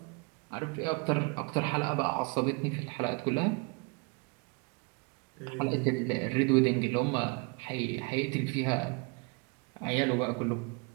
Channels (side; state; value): left; quieter; 30.8 dB